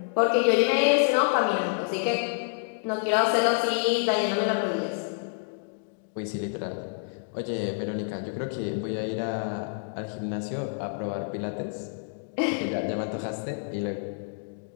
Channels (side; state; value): right; silent; digital silence